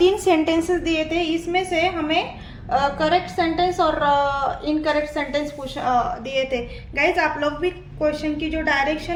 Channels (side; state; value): both; identical; correlation 1.00